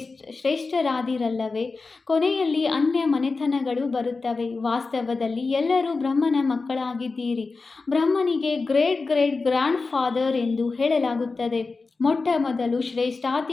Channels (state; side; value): quieter; right; 4.0 dB